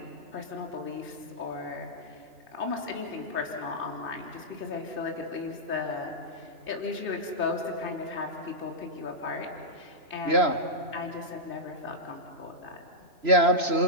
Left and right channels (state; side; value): late; left; 3.0 ms